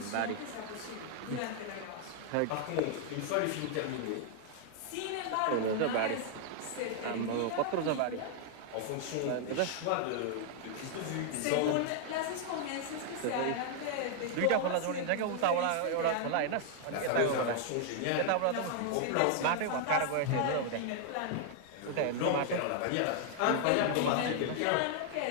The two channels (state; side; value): different; both; correlation 0.00